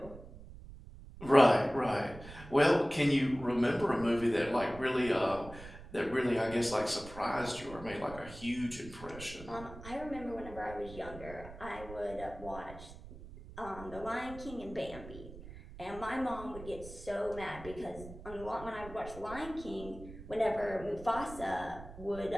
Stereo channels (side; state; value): right; noise; rumble, 15 dB below the sound